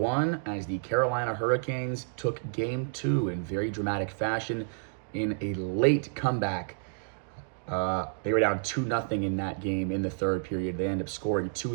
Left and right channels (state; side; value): silent; left; digital silence